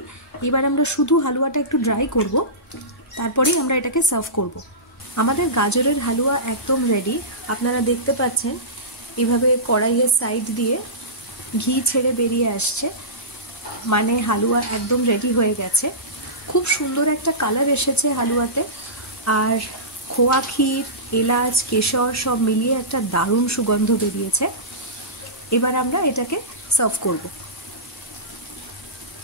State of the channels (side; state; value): both; normal; correlation -0.19